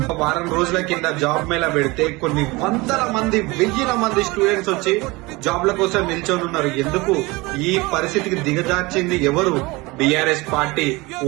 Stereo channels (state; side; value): quieter; left; 23.3 dB